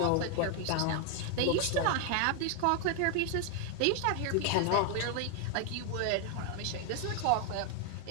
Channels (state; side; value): different; both; correlation 0.00